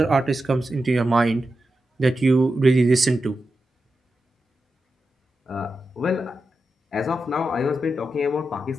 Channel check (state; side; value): normal; both; correlation 0.90